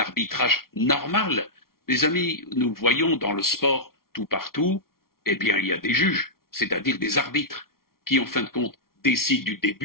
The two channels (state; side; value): late; right; 0.93 ms